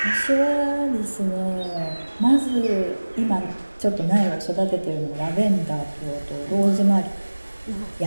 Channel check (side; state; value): both; inverted; correlation -1.00